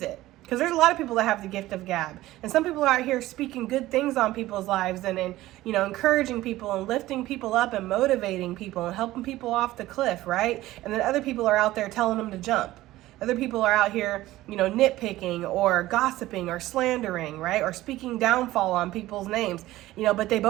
it. Because there's a lot of people that have the gift of gab. And some people are out here speaking good things on people's lives and encouraging people and lifting people up and motivating people and helping people off the cliff, right? And then other people are out there telling them to jump. Other people are out here, nitpicking or gossiping or slandering, right? Or speaking downfall on people's names, but they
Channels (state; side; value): quieter; left; 16.3 dB